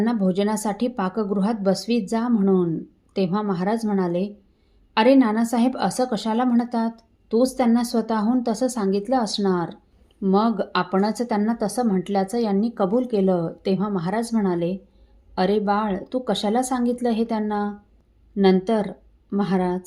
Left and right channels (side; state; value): both; identical; correlation 1.00